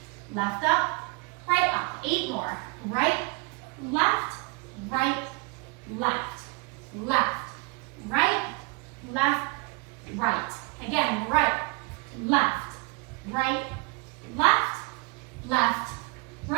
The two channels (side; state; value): left; quieter; 27.4 dB